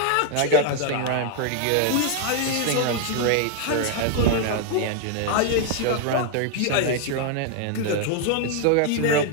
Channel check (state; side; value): different; both; correlation 0.00